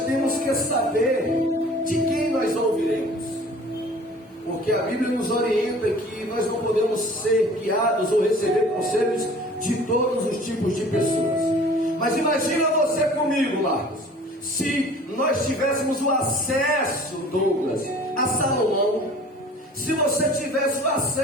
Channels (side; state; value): both; normal; correlation 0.47